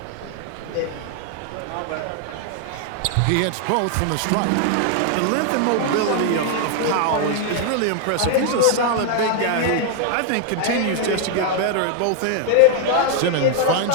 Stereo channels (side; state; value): both; different; correlation 0.00